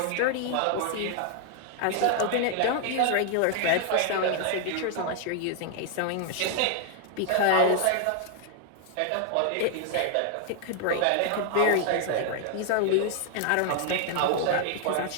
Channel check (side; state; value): both; different; correlation 0.00